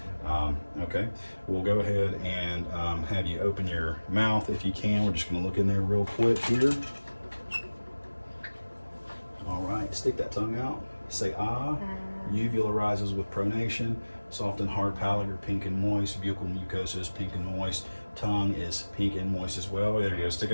Okay, we'll go ahead and have you open your mouth if you can. We're just going to look in there real quick here. All right, stick that tongue out. Say ah. Uvula rises with pronation. Soft and hard palate are pink and moist. Buccal mucosa is pink and moist. Tongue is pink and moist as well. There you go. Stick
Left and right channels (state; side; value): inverted; both; correlation -1.00